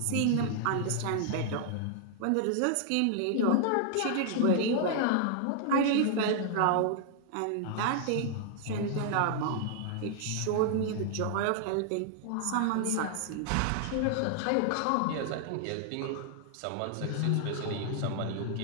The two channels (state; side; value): different; both; correlation 0.00